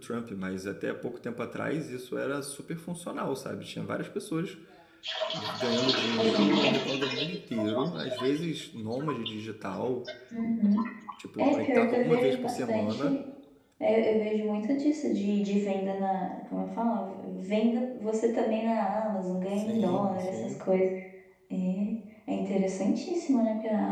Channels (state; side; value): identical; both; correlation 1.00